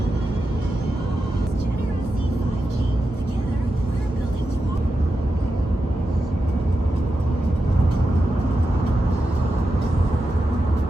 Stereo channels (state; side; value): normal; both; correlation 0.89